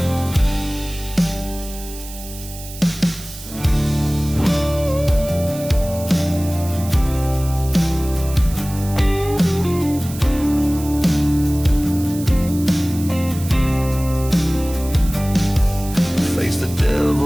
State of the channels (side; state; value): right; noise; hiss, 14 dB below the sound